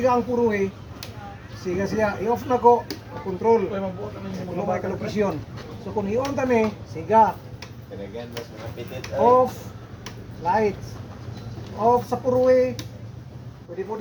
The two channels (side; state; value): both; identical; correlation 1.00